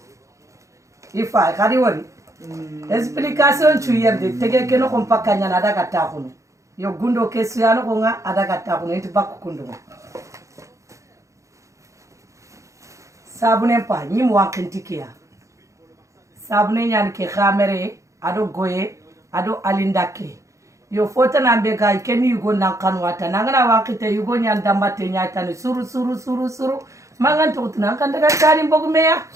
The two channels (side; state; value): left; late; 0.15 ms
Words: ifa khadi wori explication tu yerde tege keno ko pakanya na daga takuno yo gundo kesu yano ko nga adaga takuno itu bakku kundo sabune pa nyim wankentikia sabune nyan ke khamere ado goye ado alindake yo fota na mbega ikeni yugo na kanwata nangana wankite yugo nyan dambate nyatani suru mangan to tuna kan daga tani bogumeya